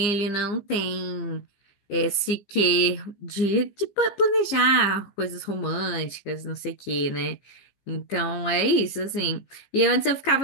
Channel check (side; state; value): right; late; 15 ms